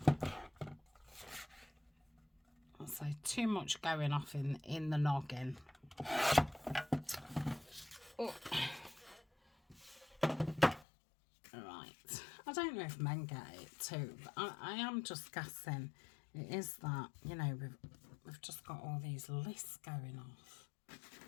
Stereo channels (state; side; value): drops out; right; at 10.9 s